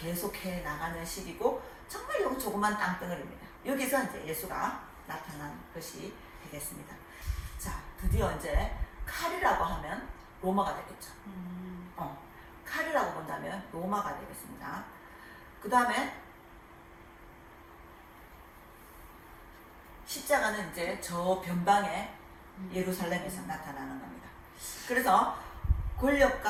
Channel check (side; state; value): both; identical; correlation 1.00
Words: 나가는 시기고 정말 요 조그만 땅덩어리입니다. 여기서 이제 예수가 나타난 것이 되겠습니다. 자, 드디어 이제 칼이라고 하면 로마가 되겠죠. 칼이라고 본다면 로마가 되겠습니다. 그 다음에 십자가는 이제 저 변방에 예루살렘에서 나타나는 겁니다. 그래서